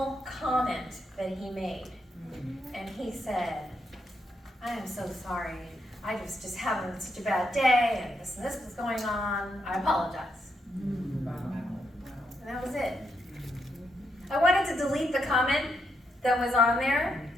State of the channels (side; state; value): both; normal; correlation 0.80